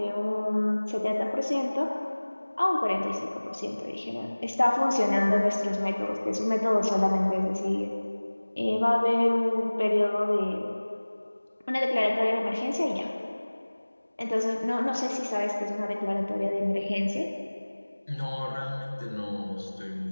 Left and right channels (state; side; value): inverted; both; correlation -1.00